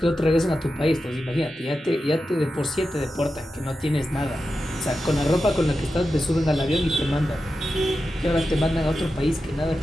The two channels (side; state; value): both; normal; correlation 0.91